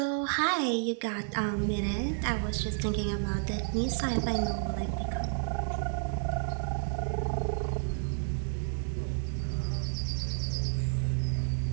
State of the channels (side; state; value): left; silent; digital silence